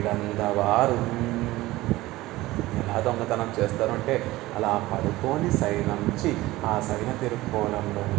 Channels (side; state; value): left; quieter; 18.1 dB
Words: ఎలా దొంగతనం చేస్తారు అంటే అలా పడుకొని సైనంచి ఆ సైన తిరుక్కోలంలో